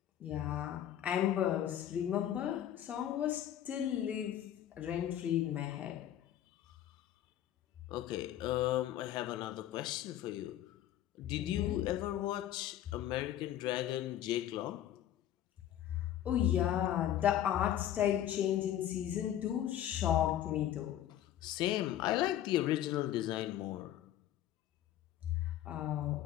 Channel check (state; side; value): quieter; right; 11.7 dB